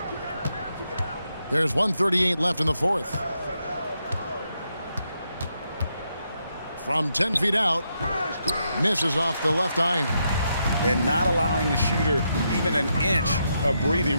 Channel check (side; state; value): both; inverted; correlation -0.81